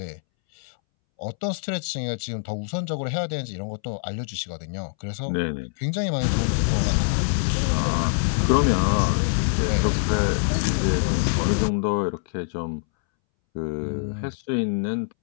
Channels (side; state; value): right; silent; 62 dB below the other